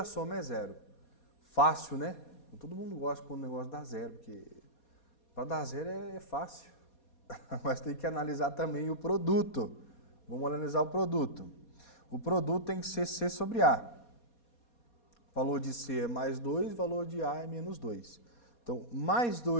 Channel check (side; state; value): right; late; 4.2 ms